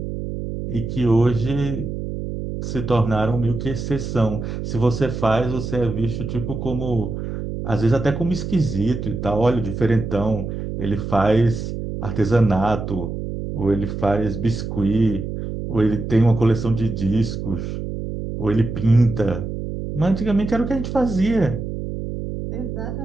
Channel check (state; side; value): noise; right; hum, 5 dB below the sound